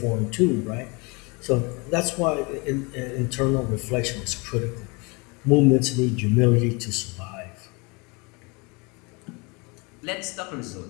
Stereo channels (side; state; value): right; quieter; 29.0 dB